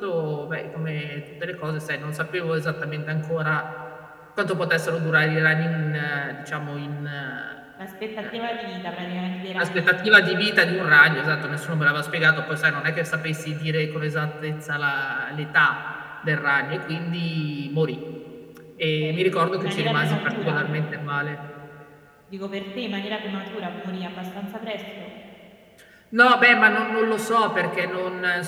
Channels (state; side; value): identical; both; correlation 1.00